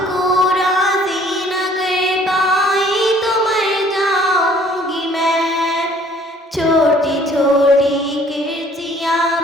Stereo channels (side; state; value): both; normal; correlation 0.57